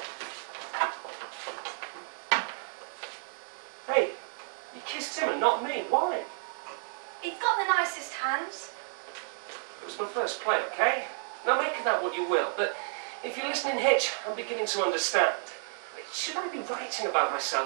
Hey, you kissed him and not me. Why? He's got the nicest hands. It was my first play, okay? Now, make of that what you will, but if you're listening, Hitch, I'm beginning to understand. Should I be writing about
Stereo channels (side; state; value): left; silent; 57 dB below the other